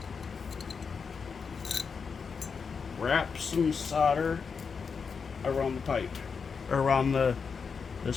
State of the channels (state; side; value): quieter; right; 5.7 dB